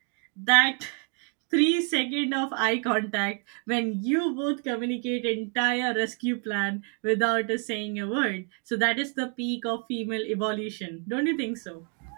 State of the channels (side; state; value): left; quieter; 37.8 dB